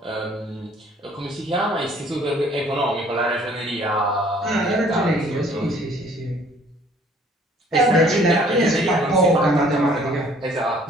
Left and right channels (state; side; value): normal; both; correlation 0.57